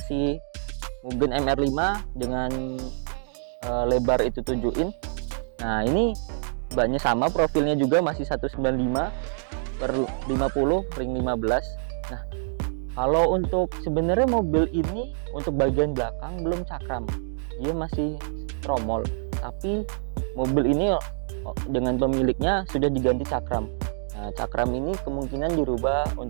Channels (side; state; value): left; silent; digital silence